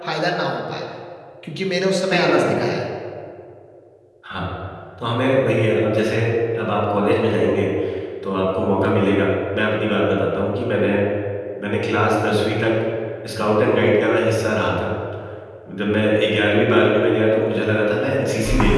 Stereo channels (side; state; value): both; identical; correlation 1.00